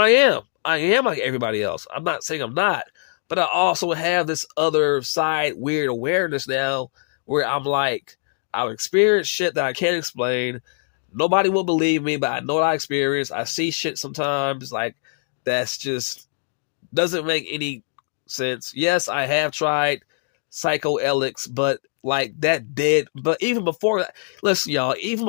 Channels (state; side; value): silent; right; digital silence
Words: I am. I am like everybody else. I'm not saying I'm not, but I also have this other side weird awareness now where I'm like, I've experienced shit that I can't explain. Nobody will believe me, but I know what I experienced. I see shit sometimes like that's just doesn't make any sense. Yes, I have tried psychoelics, but like that did. But even before that, listen, y'all, even